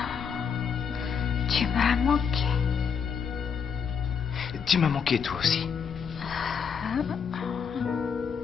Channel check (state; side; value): quieter; right; 6.6 dB